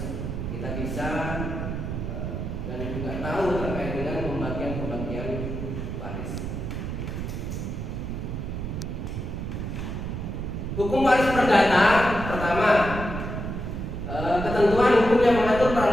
kita bisa dan juga tahu terkait dengan pembagian waris. Hukum waris perdata pertama, ketentuan hukum yang mengatur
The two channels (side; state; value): right; noise; rumble, 4 dB below the sound